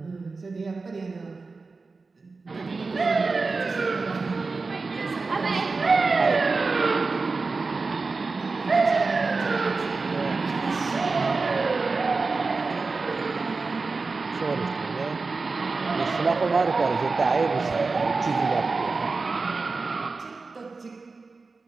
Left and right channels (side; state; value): left; quieter; 4.0 dB